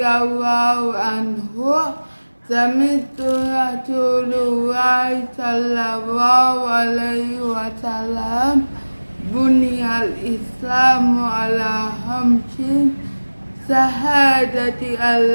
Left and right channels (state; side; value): inverted; both; correlation -1.00